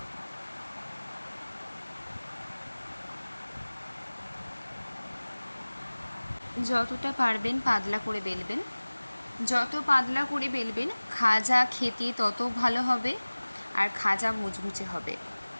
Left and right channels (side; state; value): both; inverted; correlation -1.00